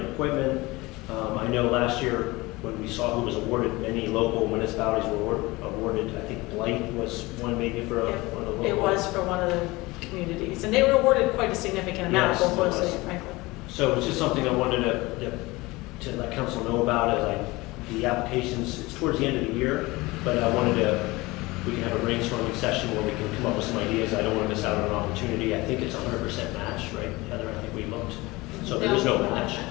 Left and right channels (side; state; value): right; quieter; 21.8 dB